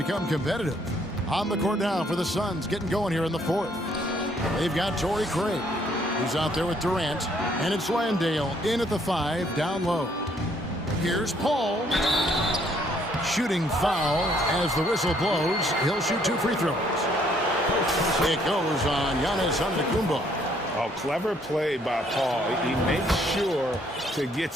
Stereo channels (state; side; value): normal; both; correlation 0.66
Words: competitive. On the court now for the Suns, getting going here in the 4th. They've got Torrey Craig, who's out there with Durant. And it's Landale in at the 5, down low. Here's Paul. Shooting foul as the whistle blows. He'll shoot 2 free throws. It goes on Giannis Antetokounmpo. Oh, clever play by Paul. He makes sure to get